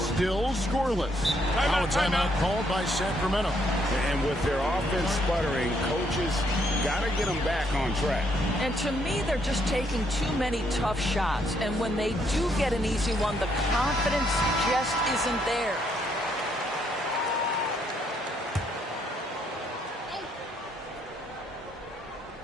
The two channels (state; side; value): normal; both; correlation 0.72